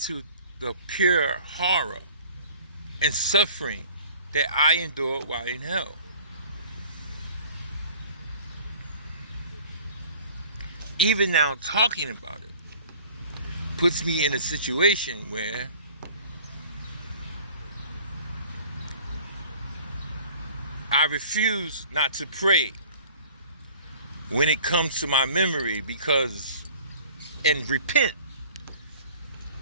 the pure horror and suffering that I endured while in hell. Even now talking about it puts me in a situation where I refuse not to pray when it comes to my memory, and repent.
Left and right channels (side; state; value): both; inverted; correlation -0.47